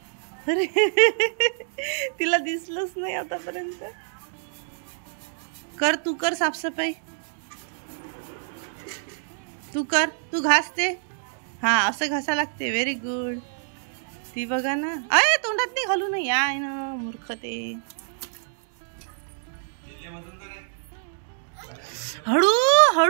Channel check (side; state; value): left; silent; digital silence